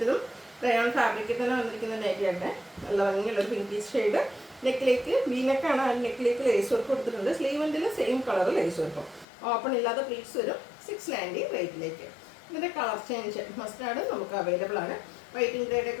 റയോൺ ഫാബ്രിക്കിൽ തന്നെ വന്നിരിക്കുന്ന നൈറ്റിയായിട്ട് നല്ല ഭംഗിയുള്ളൊരു പിങ്കീഷ് ഷെയ്ഡ്. നെക്കിലേക്ക് വീനക്കാണ്, ആ നെക്കിലേക്ക് ലേസ് വർക്ക് കൊടുത്തിട്ടുണ്ട്. സ്ലീവെൻറ്റിൽ സെയിം കളർ ലേസ് വർക്കും, ഓപ്പൺ ഇല്ലാത്ത പ്ലീറ്റ്സ് വരും. 690 റേറ്റിലേക്ക്. ഇതിൻ്റെ കളർ ചേഞ്ച് മസ്റ്റാർഡ് നമുക്ക് അവൈലബിൾ ആണ്. വൈറ്റിംഗ്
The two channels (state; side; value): drops out; right; at 9.2 s